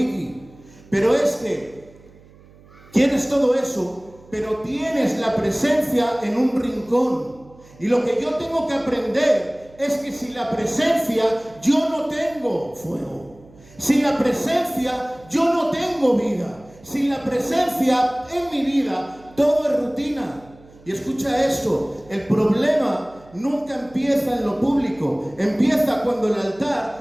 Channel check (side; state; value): right; noise; hum, 25 dB below the sound